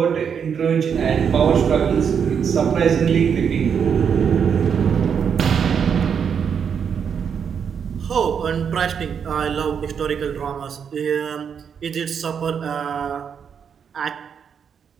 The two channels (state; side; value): quieter; left; 7.2 dB